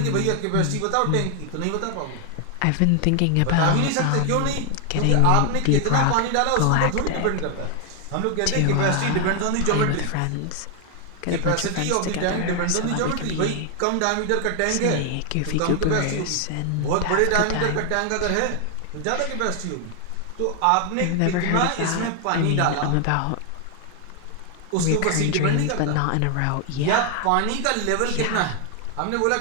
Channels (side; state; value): both; different; correlation 0.00